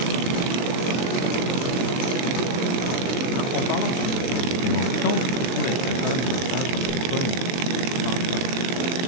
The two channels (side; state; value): right; late; 23 ms